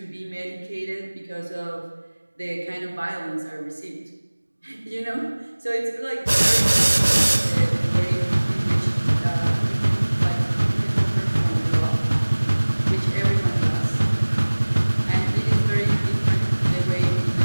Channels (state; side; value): inverted; both; correlation -1.00